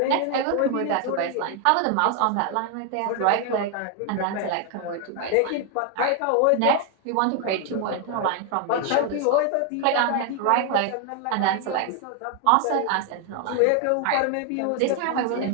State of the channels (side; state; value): both; different; correlation 0.00